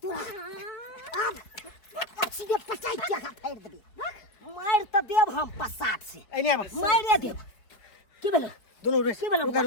सीधे पचाई के का फेर देबे मार त देब हम पसाट से एने बस मारे देब की भेलो दोनों रेस की भेलो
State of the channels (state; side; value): late; right; 4.7 ms